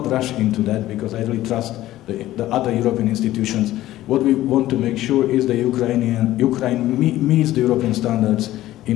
rush into that, because I really trust the other European institutions. What we want to make sure is that Ukraine meets the European standards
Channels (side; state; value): right; quieter; 15.0 dB